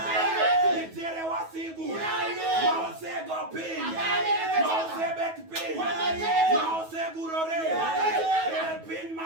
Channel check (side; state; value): left; late; 9.3 ms